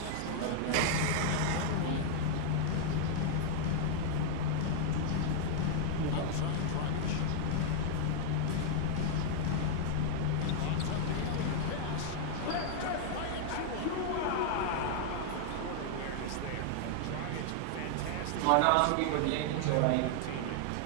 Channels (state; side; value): different; both; correlation -0.01